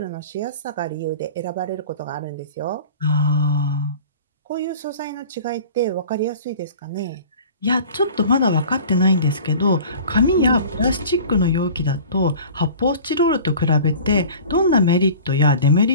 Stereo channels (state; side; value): inverted; both; correlation -0.42